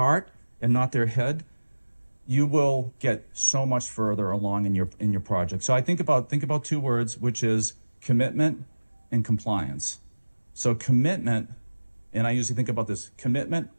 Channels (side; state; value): both; inverted; correlation -1.00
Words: and not their head, you will get so much further along in your project. So I think about two words, which is commitment and compliance. So commitment, and I usually think about this, commitment,